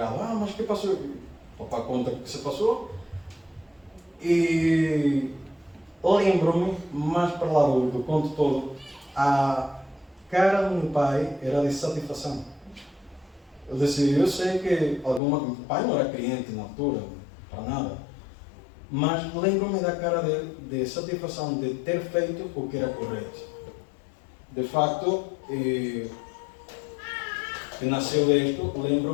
Ah, mas o que passou? O papai conta o que se passou. E lembro-me, mais para lá do conto todo, a cara do meu pai era de satisfação. Eu disse, eu sei que meu pai não era cliente na altura, para nada, mas lembro-me da cara dele de satisfação de ter feito o que era correto. De facto, que nasceu disto,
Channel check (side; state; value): right; drops out; at 15.2 s